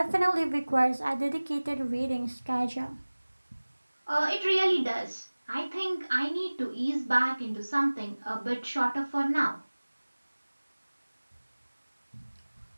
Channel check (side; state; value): both; inverted; correlation -1.00